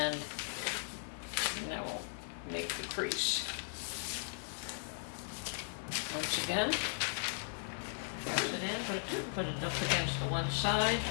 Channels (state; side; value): silent; right; 53 dB below the other